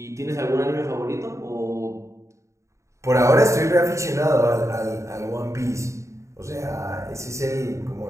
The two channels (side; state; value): left; late; 0.14 ms